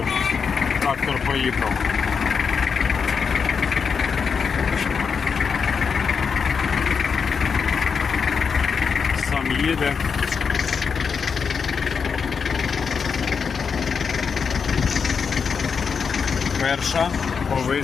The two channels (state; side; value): quieter; right; 6.0 dB